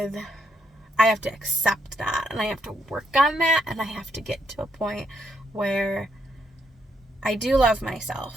I have to accept that, and I have to work on that, and I have to get to a point where I do love myself,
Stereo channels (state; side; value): normal; both; correlation 0.76